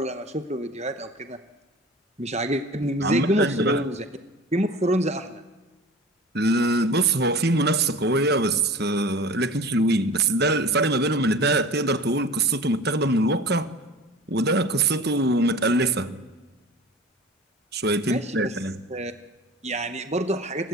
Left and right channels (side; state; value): both; normal; correlation 0.39